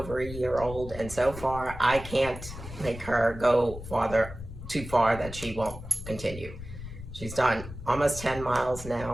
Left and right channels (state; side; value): noise; left; rumble, 11 dB below the sound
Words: a year old, and so far I can't make her go too far that she won't continue. She's done almost 10 miles